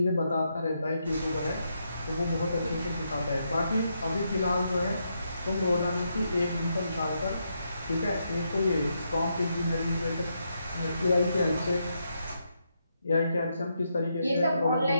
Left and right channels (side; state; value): both; inverted; correlation -0.81